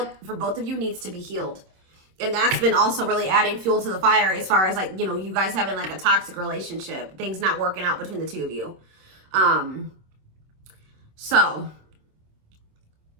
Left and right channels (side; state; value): left; late; 26 ms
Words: for both of you needs to be healed. And that's been also really adding fuel to the fire as far as like, you know, you guys having like a toxic relationship, things not working out between the two of you. So